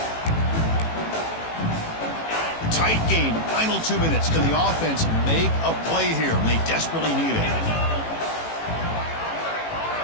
Tight game, final 2 minutes. Can the offense make a play here? And they desperately need it.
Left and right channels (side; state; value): right; late; 18 ms